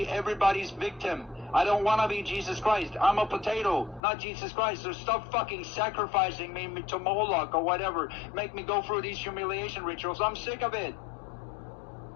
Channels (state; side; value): drops out; right; at 4.0 s